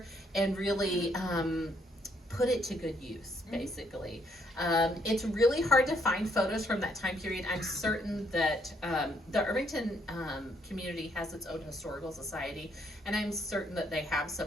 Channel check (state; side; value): normal; both; correlation 0.71